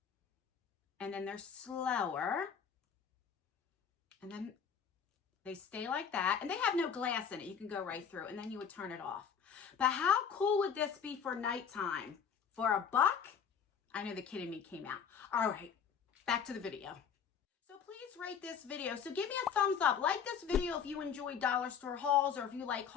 And then they're slower. And then they stay like that, and they have no glass in it. You can go right through, and then you would turn it off. But how cool would this be for nighttime? For $1? I know the kid in me came out. All right, back to the video. So please rate this video. So give me a thumbs up. Like this video if you enjoy dollar store hauls, or if you like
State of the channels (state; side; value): quieter; right; 7.2 dB